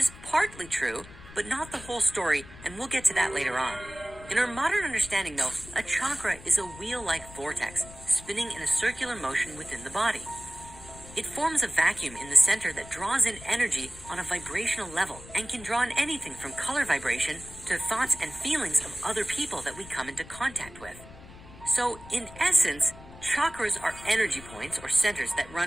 partly true, but not the whole story, and we'll get to that later on. In our modern understanding, though, a chakra is a wheel-like vortex spinning in a circular motion within the body. It forms a vacuum in the center that draws in energy on a vibrational level and can draw in anything from color vibration to thoughts and feelings of other people that we come into contact with. So, in essence, chakras are energy points or centers that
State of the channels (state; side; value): noise; left; rumble, 18 dB below the sound